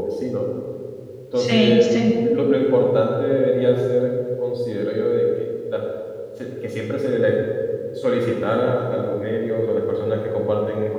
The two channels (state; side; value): identical; both; correlation 1.00